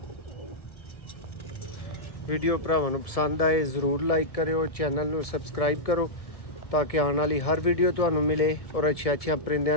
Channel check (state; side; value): late; right; 1.7 ms